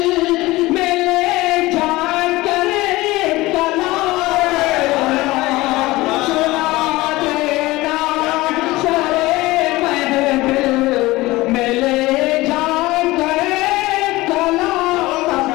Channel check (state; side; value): quieter; right; 19.6 dB